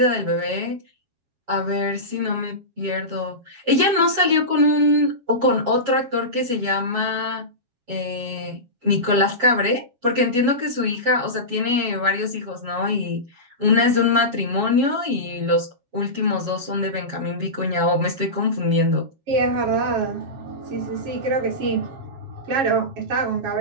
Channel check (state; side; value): late; left; 7.3 ms